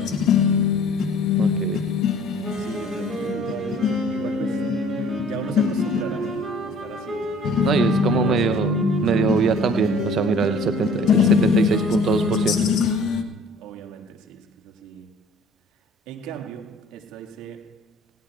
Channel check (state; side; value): normal; both; correlation 0.51